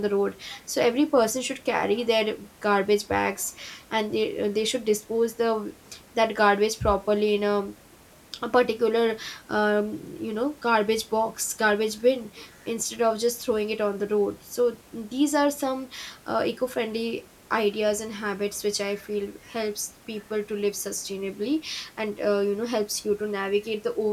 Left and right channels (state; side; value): identical; both; correlation 1.00